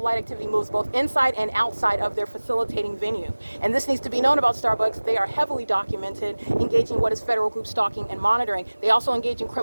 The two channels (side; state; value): both; inverted; correlation -1.00